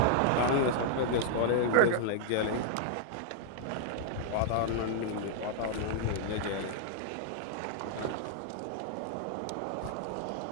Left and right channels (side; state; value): both; different; correlation -0.01